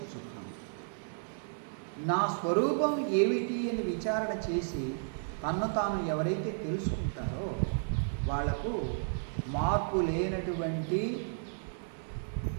నా స్వరూపం ఏమిటి అని విచారణ చేసి తన్ను తాను ఎవరైతే తెలుసుకుంటారో వాళ్లకు మార్పు లేనటువంటి,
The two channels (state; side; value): silent; left; 56 dB below the other